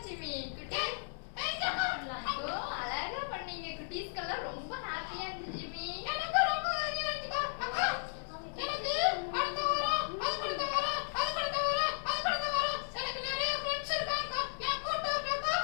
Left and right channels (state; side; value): silent; right; digital silence